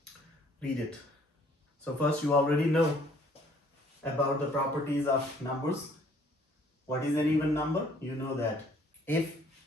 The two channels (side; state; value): both; normal; correlation 0.60